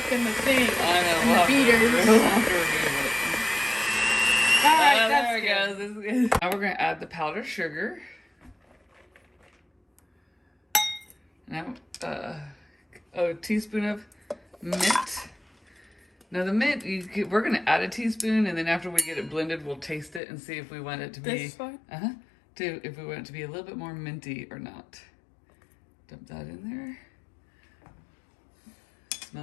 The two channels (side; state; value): right; drops out; at 20.2 s